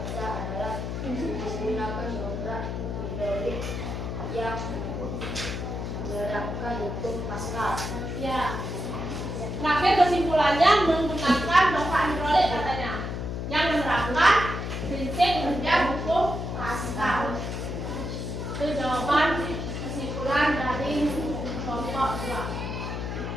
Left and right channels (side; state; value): left; noise; hum, 4 dB below the sound